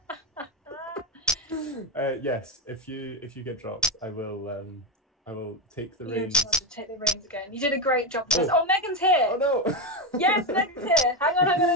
Yes, if you get dropped, I will take the reins. You take the reins again. You did a great job. Oh, Megan's here. Oh no. Yes, Megan's here. Hang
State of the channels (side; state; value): both; normal; correlation 0.11